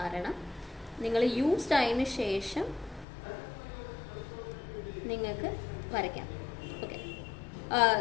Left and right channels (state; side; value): drops out; right; at 3.1 s